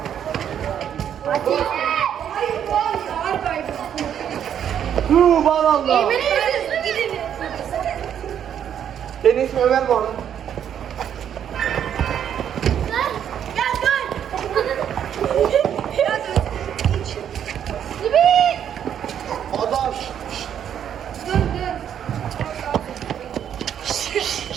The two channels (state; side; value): quieter; left; 9.3 dB